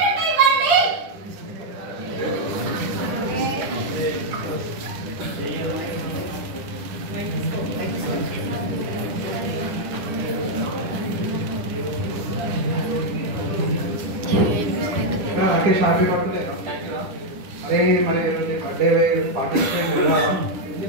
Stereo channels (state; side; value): late; left; 10 ms